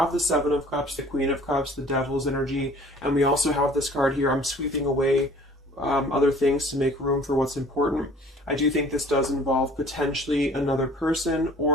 the Seven of Cups, the Queen of Cups, the Devil's energy, and we also have this card here, I'm sweeping away other things to make room for what's important. I do think this does involve potentially another person,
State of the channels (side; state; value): both; normal; correlation 0.51